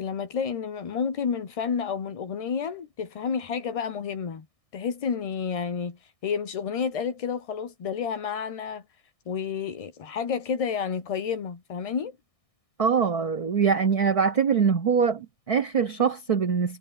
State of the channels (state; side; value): late; right; 1.6 ms